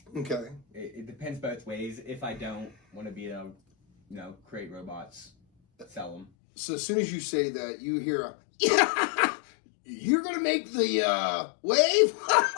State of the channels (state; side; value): drops out; right; at 6.2 s